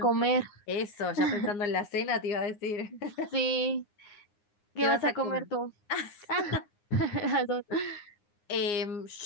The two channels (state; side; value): late; right; 9.7 ms